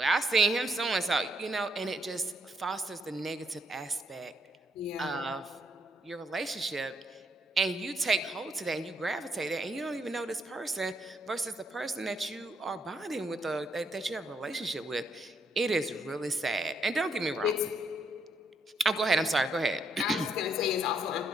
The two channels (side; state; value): both; normal; correlation 0.74